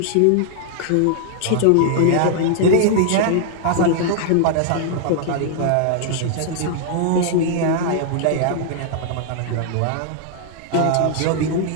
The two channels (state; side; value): different; both; correlation 0.00